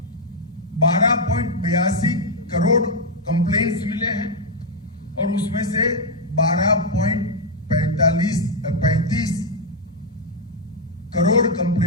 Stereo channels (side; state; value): both; normal; correlation -0.01